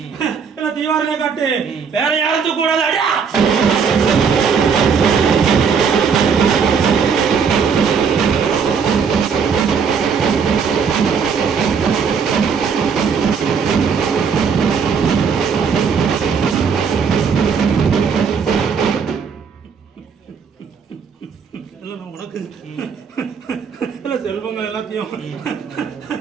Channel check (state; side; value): quieter; left; 6.2 dB